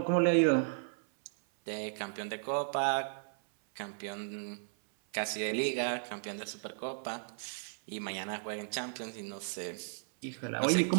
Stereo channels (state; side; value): silent; left; 54 dB below the other